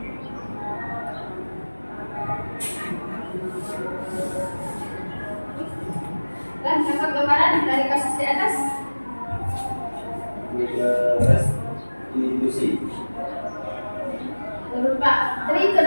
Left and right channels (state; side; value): inverted; both; correlation -1.00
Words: Dan dapat gambaran dari kasus di atas. Restitusi. Menurut Pak Tri itu